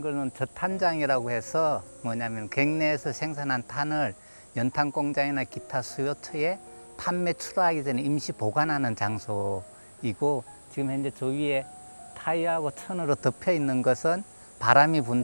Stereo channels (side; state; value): both; inverted; correlation -1.00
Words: 거는 저탄장이라고 해서 뭐냐면 객내에서 생산한 탄을 연탄 공장이나 기타 수요처에 판매 출하하기 전에 임시 보관하는 장소이고, 지금 현재 저 위에 타이어하고 천으로 덮여 있는 것은 바람이